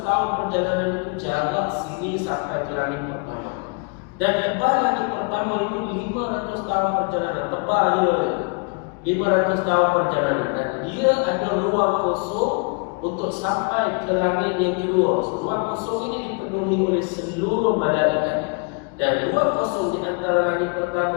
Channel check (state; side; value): quieter; right; 37.0 dB